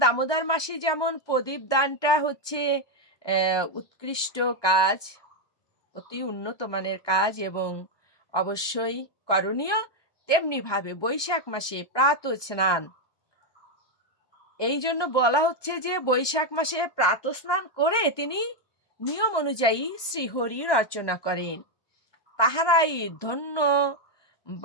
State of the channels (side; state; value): right; late; 1.2 ms